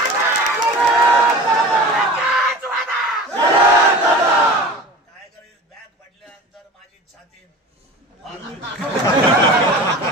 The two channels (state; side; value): normal; both; correlation 0.37